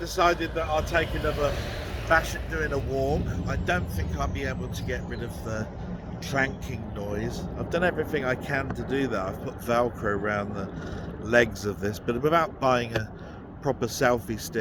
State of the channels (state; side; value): identical; both; correlation 1.00